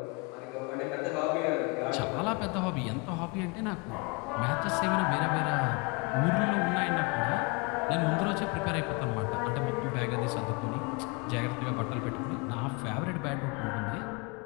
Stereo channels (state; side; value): quieter; right; 29.0 dB